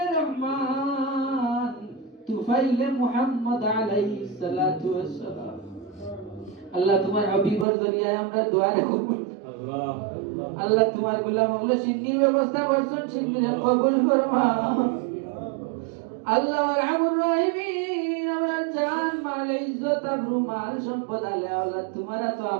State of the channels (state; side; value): drops out; left; at 7.7 s